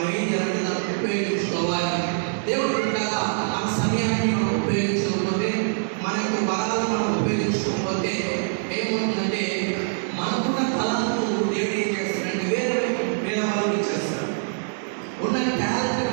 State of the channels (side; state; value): left; silent; digital silence